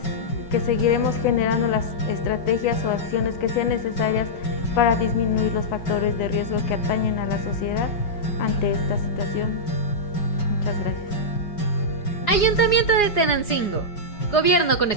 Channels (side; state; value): right; late; 4.9 ms